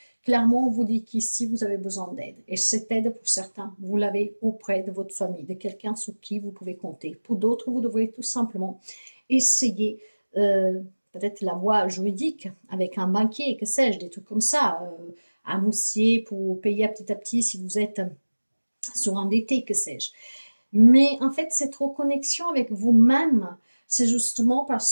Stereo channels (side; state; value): both; inverted; correlation -1.00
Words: Clairement, on vous dit qu'ici, vous avez besoin d'aide. Et cette aide, pour certains, vous l'avez auprès de votre famille, de quelqu'un sur qui vous pouvez compter. Pour d'autres, vous devrez tout simplement essayer peut-être la voie juridique avec un banquier, que sais-je, des trucs comme ça, un moussier pour payer à petit si vous êtes surendetté, que sais-je. Mais en fait, cette reconnexion avec vous-même, c'est justement